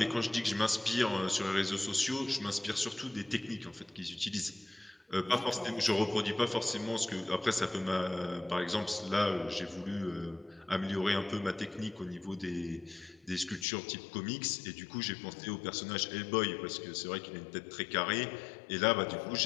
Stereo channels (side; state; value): right; drops out; at 13.7 s